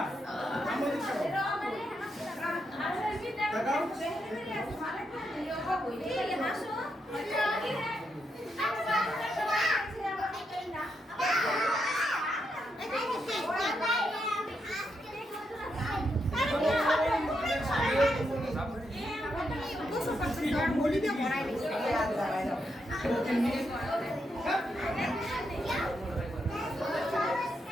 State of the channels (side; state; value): both; normal; correlation 0.82